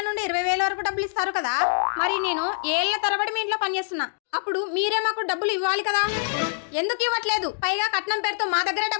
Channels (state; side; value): silent; right; digital silence